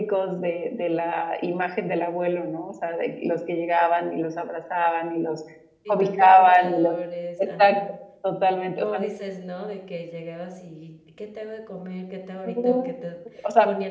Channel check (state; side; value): identical; both; correlation 1.00